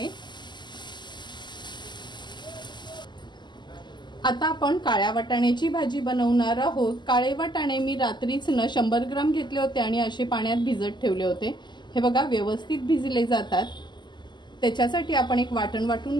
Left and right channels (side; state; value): right; late; 0.21 ms